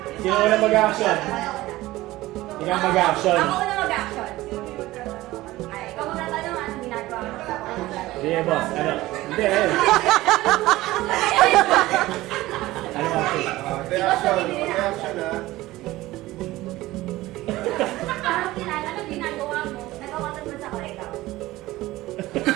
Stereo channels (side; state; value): left; quieter; 17.6 dB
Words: Sino una mag-action? Ikaw mag-action. Ako na mag-action. Ay, ikaw magtatanong ano ginagawa mo. Sige, boss. Ano? Hindi, Ano action? Reaction, reaction ha. Parang kilala na ginagawa mo. Nagkakatag mo sa ko, ikaw.